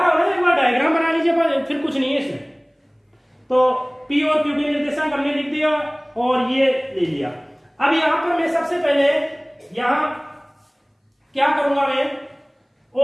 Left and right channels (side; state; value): both; identical; correlation 1.00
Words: हूं, एक बार डायग्राम बना लीजिए, फिर कुछ नहीं है इसमें। तो P और Q के निर्देशांक हमने लिख दिया और ये ले लिया। अब यहां पर मैं सबसे पहले यहां क्या करूंगा, मैं